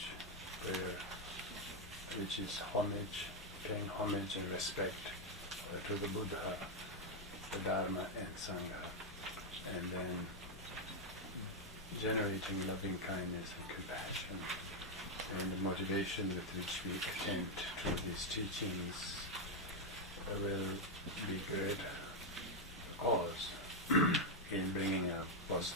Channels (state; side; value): normal; both; correlation 0.02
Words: prayer, which is homage, paying homage and respect to the Buddha, the Dharma and Sangha, and then generating loving kindness and compassion. And the motivation with which we attend to these teachings will be great cause in bringing a